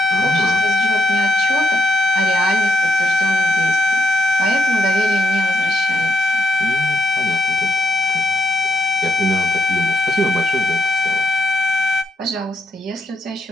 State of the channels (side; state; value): both; normal; correlation 0.77